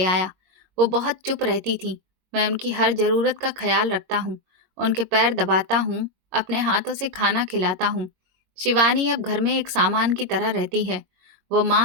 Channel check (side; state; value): left; late; 22 ms